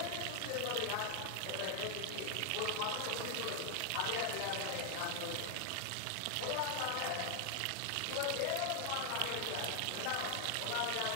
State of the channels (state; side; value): different; both; correlation 0.00